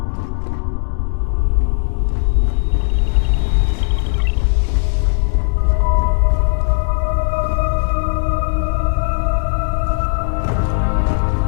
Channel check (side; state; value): right; silent; digital silence